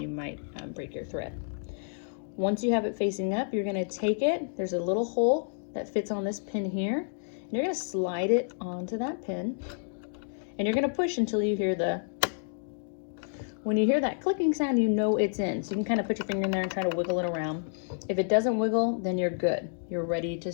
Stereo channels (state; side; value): silent; right; digital silence